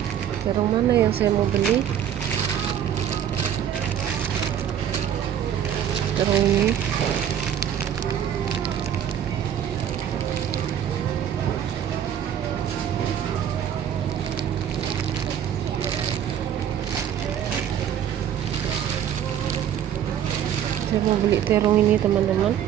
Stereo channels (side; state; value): left; quieter; 9.6 dB